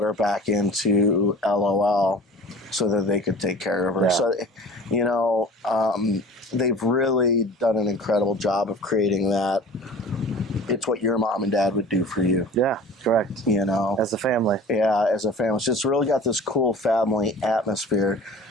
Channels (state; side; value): normal; both; correlation 0.42